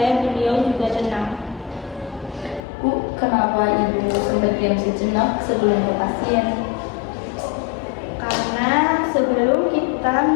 beliau juga tenang. Bu, kenapa Ibu sempat diam sejenak sebelum ke pasien? Karena sebelum kita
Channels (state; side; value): drops out; right; at 2.6 s